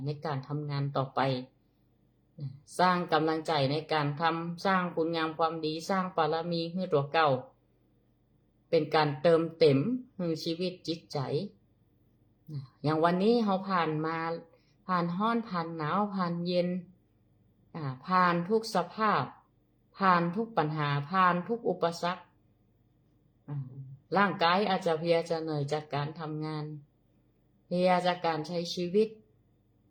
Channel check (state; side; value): identical; both; correlation 1.00